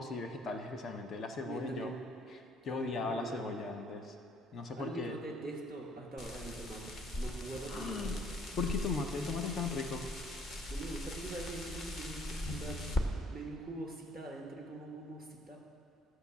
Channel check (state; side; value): normal; both; correlation 0.63